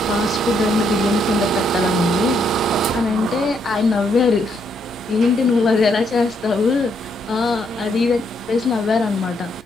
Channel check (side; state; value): both; normal; correlation 0.74